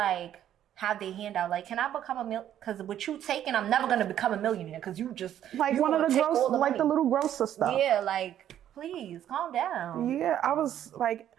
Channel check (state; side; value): quieter; left; 10.9 dB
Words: have their hand out. Like, can I become a because with you taking, I'm never gonna become a millionaire because you just Like you one of the take gross, all the like money. the little grocer stuff. Yeah, like, please calm down. Yeah, I was like,